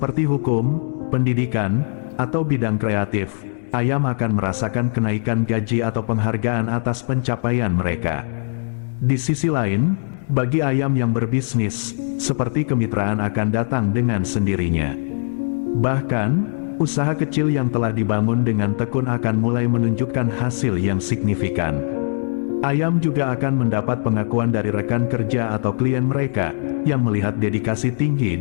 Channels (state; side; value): silent; right; digital silence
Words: hukum, pendidikan, atau bidang kreatif, ayam akan merasakan kenaikan gaji atau penghargaan atas pencapaian mereka. Di sisi lain, bagi ayam yang berbisnis, seperti kemitraan akan datang dengan sendirinya. Bahkan, usaha kecil yang telah dibangun dengan tekun akan mulai menunjukkan hasil yang signifikan. Ayam juga akan mendapat pengakuan dari rekan kerja atau klien mereka, yang melihat dedikasi tinggi